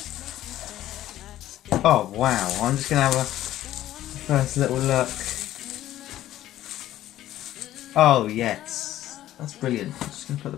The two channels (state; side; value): quieter; right; 13.6 dB